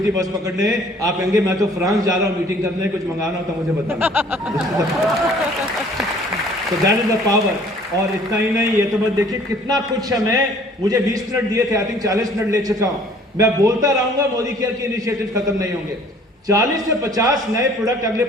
बस पकड़ने, आप कहेंगे मैं तो फ्रांस जा रहा हूं मीटिंग करने, कुछ मंगाना हो तो मुझे बताना। तो दैट इज द पावर। और इतना ही नहीं, ये तो बस देखिए कितना कुछ है। मुझे 20 मिनट दिए थे, आई थिंक 40 मिनट ले चुका हूं। मैं बोलता रहूंगा, मोदी केयर के इनिशिएटिव खत्म नहीं होंगे। 40 से 50 नए प्रोडक्ट अगले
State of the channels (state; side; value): normal; both; correlation 0.55